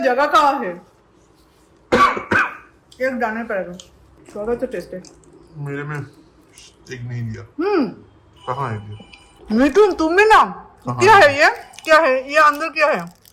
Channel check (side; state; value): both; identical; correlation 1.00